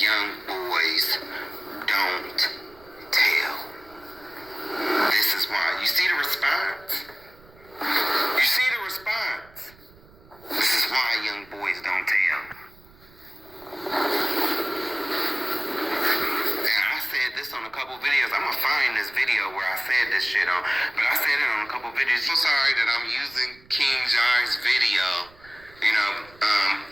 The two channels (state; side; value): noise; right; rumble, 25 dB below the sound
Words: boys don't tell. This is why. You see the response? This is why young boys don't tell. On a couple videos. I'm gonna find this video where I said this shit on, but I said it on a couple videos. I'm sorry that I'm using King Jai's video,